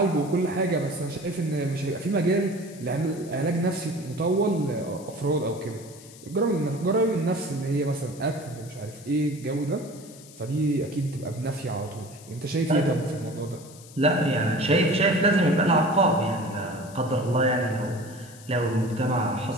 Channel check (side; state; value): left; noise; hiss, 20 dB below the sound